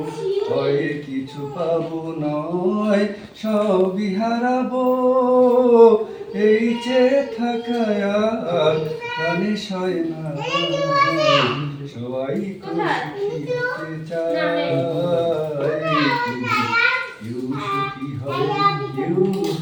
হয় কিছু পাবো নয় সবই হারাবো। এই যে থাকা আর প্রাণে সয় না, সবাই তো সুখী হতে চায়, কেউ সুখী হয় কেউ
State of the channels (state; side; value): identical; both; correlation 1.00